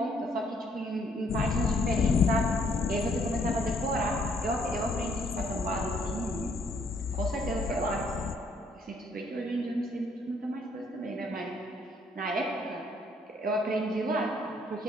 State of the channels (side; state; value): both; normal; correlation 0.66